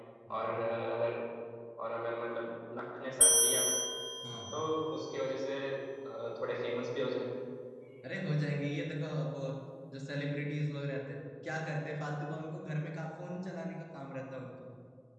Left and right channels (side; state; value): both; identical; correlation 1.00